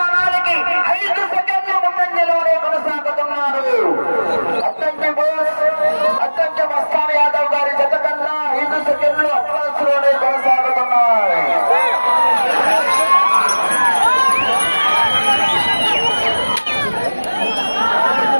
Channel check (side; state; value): both; inverted; correlation -1.00